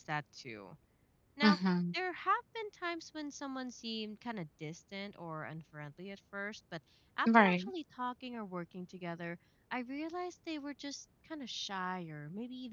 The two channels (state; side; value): identical; both; correlation 1.00